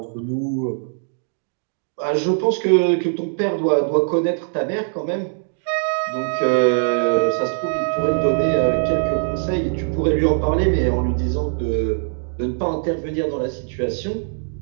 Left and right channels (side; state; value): left; silent; digital silence